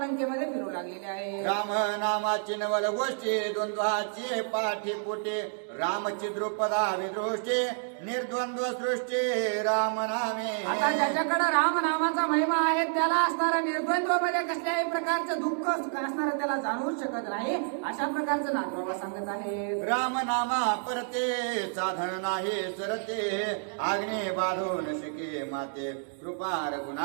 लंकेमध्ये फिरू लागलेले आहे. राम नामाची नवल गोष्टी द्वंद्वाची पाठी पोटे रामची द्रुपदा विदृष्टी निर्द्वंद्व सृष्टी राम नामे. आता ज्याच्याकडे राम नामाचा महिमा आहे त्याला असणारा निर्द्वंद्व मध्ये कसल्याही प्रकारचं दुःख असणारं त्याला जाणवूच शकत नाही अशा प्रकारचं नाथबाबा सांगत आहे. राम नामा परते साधन नाही सरते आग्ने बाधून शिके माते कृपा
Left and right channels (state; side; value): silent; left; digital silence